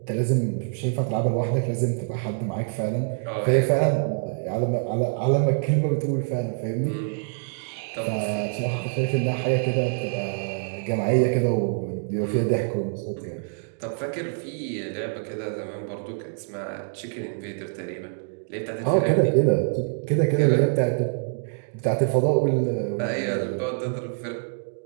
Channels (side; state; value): left; silent; digital silence